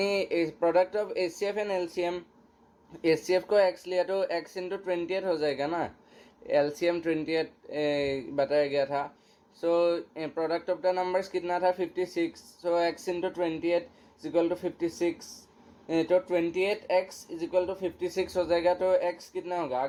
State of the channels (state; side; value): identical; both; correlation 1.00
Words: product of HCF and LCM. HCF को एक्स लिया तो एक्स इंटू 28 हो जाएगा ना, एलसीएम 28 बताया गया था। So product of the numbers कितना था, 56। So x into 28 is equal to 56। तो 28x इज इक्वल टू 56 हो जाएगा। तो x कितना होगा,